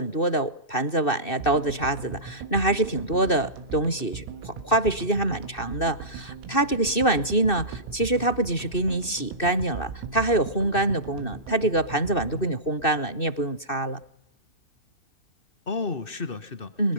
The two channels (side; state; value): right; late; 2.6 ms